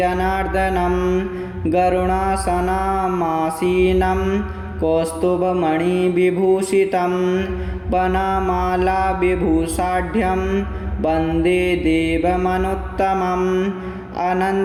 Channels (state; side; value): identical; both; correlation 1.00